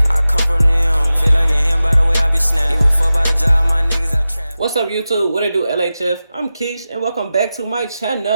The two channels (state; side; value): inverted; both; correlation -0.94